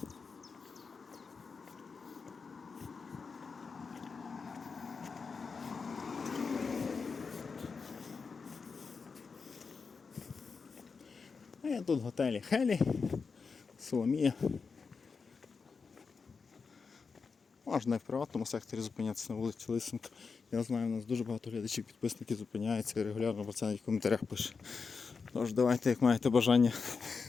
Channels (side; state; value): right; quieter; 5.1 dB